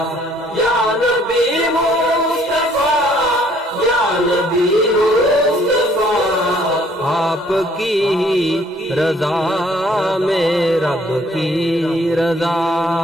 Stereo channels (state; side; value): normal; both; correlation 0.62